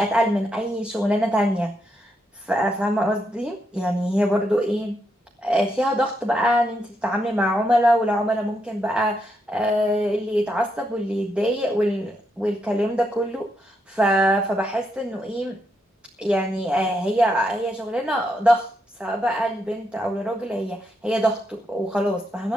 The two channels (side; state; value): both; normal; correlation 0.80